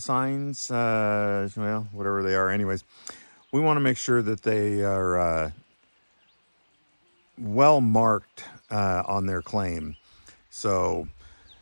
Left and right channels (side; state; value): both; inverted; correlation -1.00